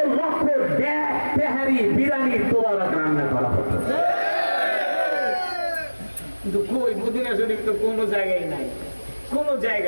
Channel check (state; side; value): inverted; both; correlation -1.00